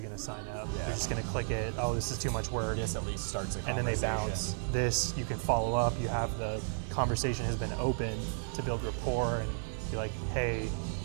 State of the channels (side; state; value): left; silent; 55 dB below the other